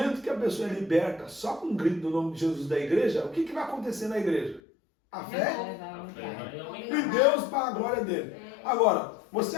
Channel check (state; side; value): drops out; right; at 4.6 s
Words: que a pessoa é liberta, só com um grito do nome de Jesus da igreja, o que vai acontecer na igreja? A fé e Deus para a glória dele. Agora, você